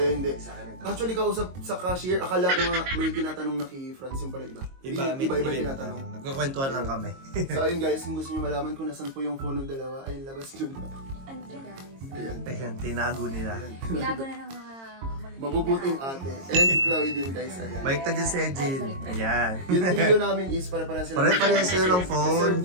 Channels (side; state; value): left; late; 22 ms